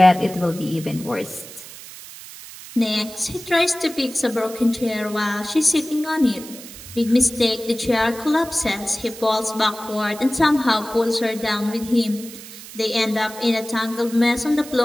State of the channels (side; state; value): right; noise; hiss, 15 dB below the sound